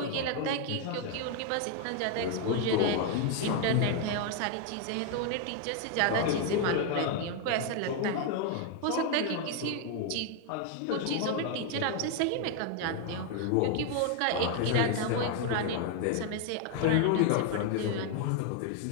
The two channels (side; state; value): both; different; correlation 0.00